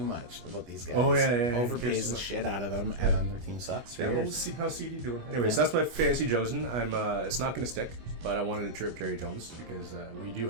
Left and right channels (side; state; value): left; late; 25 ms